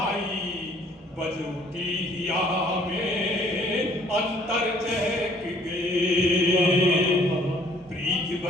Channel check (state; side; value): normal; both; correlation 0.59